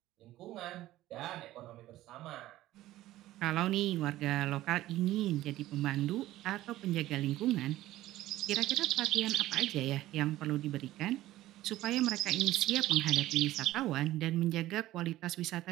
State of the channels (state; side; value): quieter; left; 15.4 dB